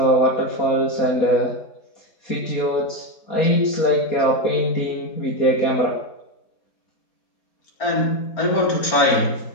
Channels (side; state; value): right; late; 4.4 ms